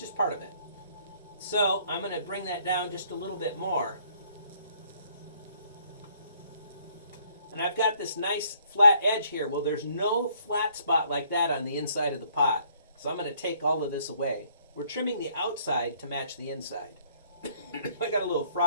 part of it. So I'm going to bring that down just a little bit more. And I've got this nice flat edge here. Well, there's no flat spot like that on the inside of the pot. So I'm going to take all of this away. We're trimming the outside to match the inside. I got a little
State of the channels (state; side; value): inverted; both; correlation -0.64